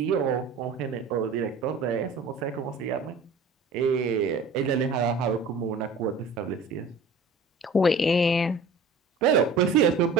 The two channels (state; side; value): quieter; left; 3.7 dB